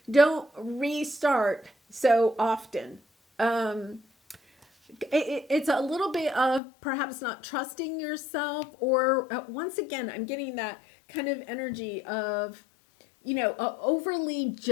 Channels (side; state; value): right; drops out; at 6.6 s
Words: don't restart so often. It's a little bit of perhaps not trusting yourself, or once again, I'm getting that kind of energy of, overly